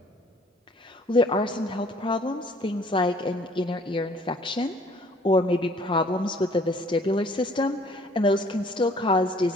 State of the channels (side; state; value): both; normal; correlation 0.57